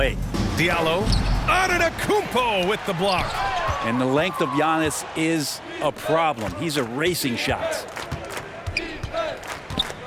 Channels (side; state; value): both; identical; correlation 1.00